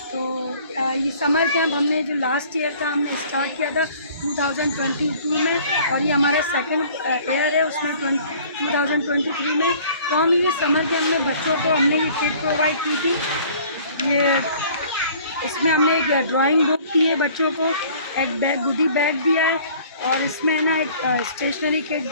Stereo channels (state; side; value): inverted; both; correlation -0.52